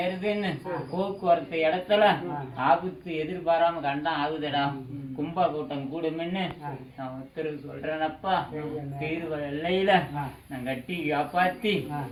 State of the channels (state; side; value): identical; both; correlation 1.00